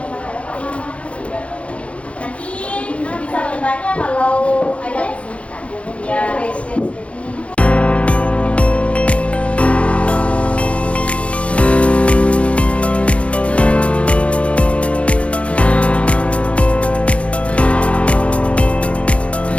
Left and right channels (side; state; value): right; late; 0.062 ms